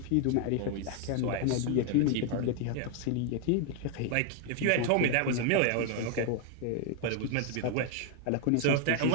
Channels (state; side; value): different; both; correlation 0.00